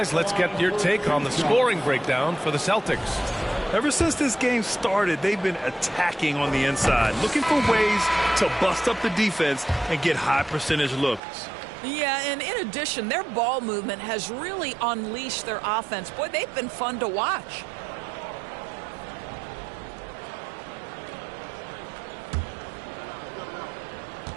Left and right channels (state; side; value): drops out; left; at 11.2 s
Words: let's get your take on the scoring breakdown for the Celtics. Ever since this game started, they've been attacking on the inside, looking for ways to bust up the defense and get high percentage looks. Yeah, and in addition, their ball movement has really unleashed their offense. Boy, they've been fun to watch.